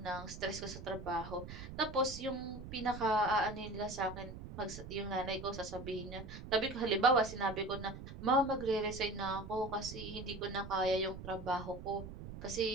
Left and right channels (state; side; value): noise; right; rumble, 11 dB below the sound